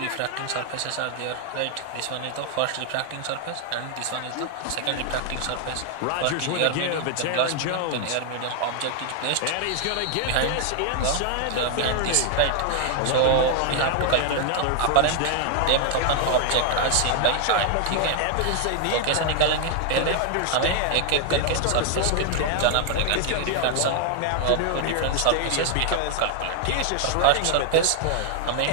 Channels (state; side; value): different; both; correlation 0.00